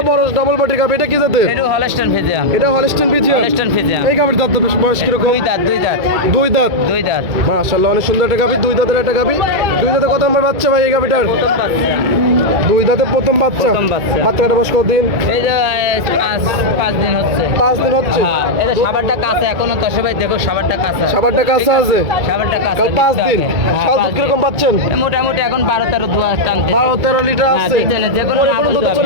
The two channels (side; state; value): left; late; 2.3 ms